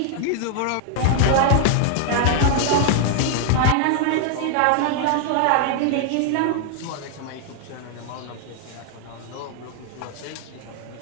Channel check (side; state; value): both; different; correlation 0.00